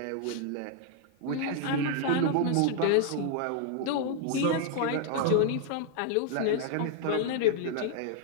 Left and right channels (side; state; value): both; different; correlation 0.00